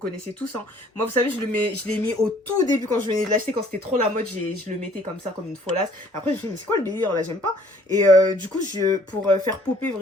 tous, hein. Moi, vous savez, je l'ai mis au tout début quand je venais de l'acheter, quand c'était trop la mode, je le mettais comme ça, comme une folasse. Après, je me suis dit, mais c'est quoi le délire là, j'aime pas. Et du coup, pour faire popper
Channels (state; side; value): normal; both; correlation 0.58